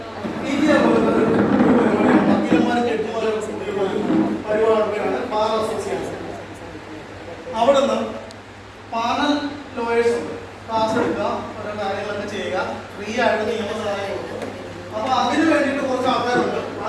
പി ടി വക്കീലന്മാരും ജഡ്ജിമാരും പരിപാടിയാണ് ബാർ അസോസിയേഷൻ. അവിടെ നിന്ന് പാനൽ ലോയേഴ്സ് ഉണ്ട്. ക്ലാസ് എടുക്കുക, ഓരോ കാര്യങ്ങളൊക്കെ ചെയ്യുക, ഫ്രീ ആയിട്ട് നിയമസഹായം കൊടുക്കുക. അപ്പൊ അതിന് വേണ്ടിയിട്ട് കുറച്ച് ആൾക്കാരുണ്ട്.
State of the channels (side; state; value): both; identical; correlation 1.00